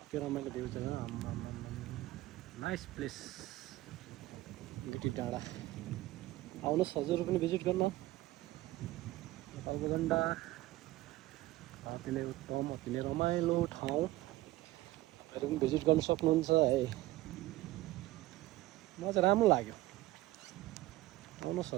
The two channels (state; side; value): quieter; left; 17.8 dB